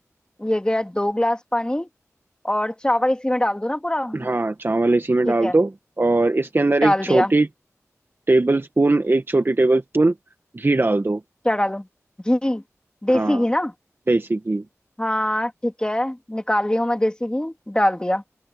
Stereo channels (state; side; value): normal; both; correlation 0.95